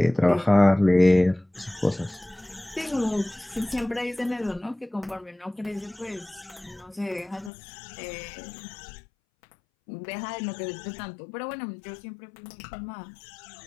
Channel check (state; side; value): drops out; right; at 7.5 s